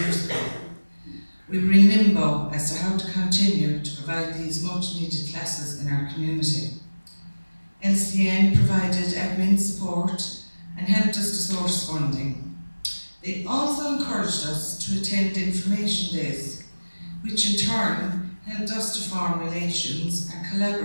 years ago. We were in limbo as to how to continue to provide these much needed classes in our community. LCN provided admin support and helped us to source funding. They also encouraged us to attend information days, which in turn helped us to form relations and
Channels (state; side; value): inverted; both; correlation -1.00